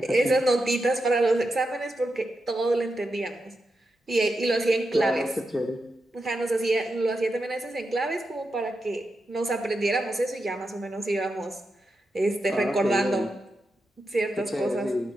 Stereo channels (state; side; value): normal; both; correlation 0.87